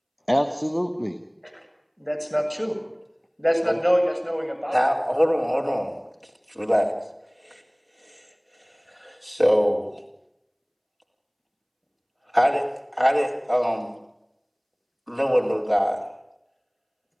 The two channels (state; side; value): identical; both; correlation 1.00